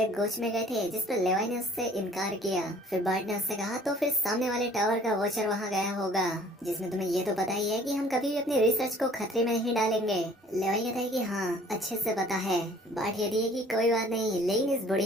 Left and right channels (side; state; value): both; normal; correlation 0.54